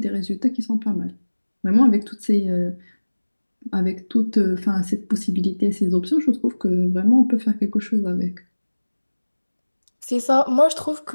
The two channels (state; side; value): inverted; both; correlation -1.00